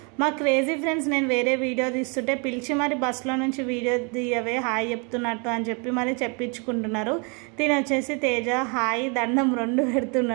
మా క్రేజీ ఫ్రెండ్స్ నేను వేరే వీడియో తీస్తుంటే పిలిచి మరి బస్సులో నుంచి వీడియో తీయవే హాయ్ చెప్తున్నట్టు అని చెప్పి మరి చెప్పించుకుంటున్నారు. తిని వచ్చేసి తేజ హాయ్ దండం 2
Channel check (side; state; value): left; quieter; 33.9 dB